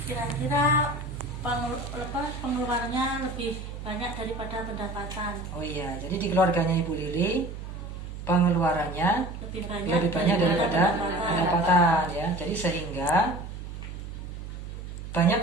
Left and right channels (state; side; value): noise; right; hum, 9 dB below the sound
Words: Kira-kira pengeluarannya lebih banyak daripada pendapatan, Oh iya, jadi di keluarganya Ibu Lili pengeluarannya lebih banyak daripada pendapatan ya. Jadi sehingga banyak